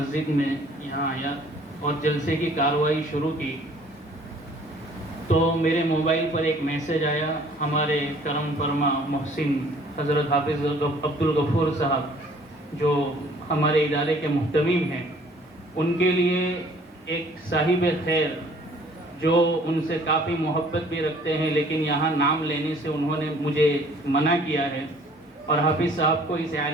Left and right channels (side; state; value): both; normal; correlation 0.55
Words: میں یہاں آیا اور جلسے کی کارروائی شروع کی تو میرے موبائل پر ایک میسج آیا. ہمارے کرم فرما محسن حضرت حافظ عبدالغفور صاحب جو ہمارے ادارے کے محتمیم ہیں, ان کے لیے ایک صاحب خیر جو ان سے کافی محبت بھی رکھتے ہیں لیکن یہاں نام لینے سے انہوں نے مجھے منع کیا ہے, اور حافظ صاحب کو اس